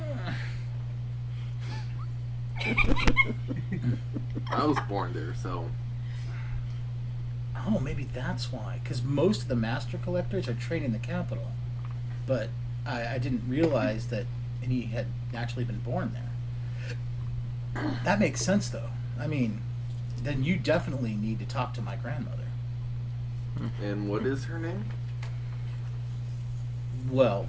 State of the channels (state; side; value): identical; both; correlation 1.00